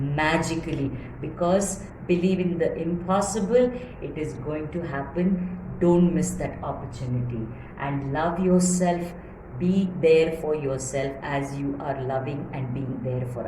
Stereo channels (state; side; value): identical; both; correlation 1.00